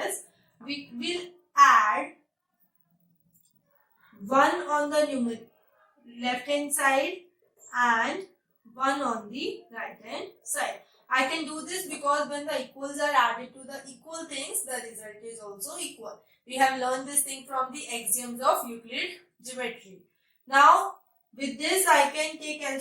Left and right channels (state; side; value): identical; both; correlation 1.00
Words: is, we will add 1 on the left hand side and 1 on the right hand side. I can do this because when the equals are added to the equal things, the result is also equal. We have learned this thing from the axioms of Euclid geometry. Now with this I can take